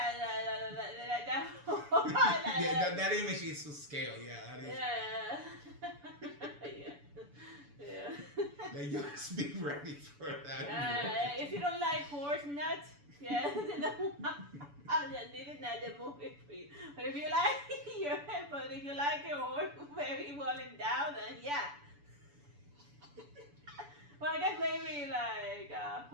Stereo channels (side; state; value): left; late; 7.0 ms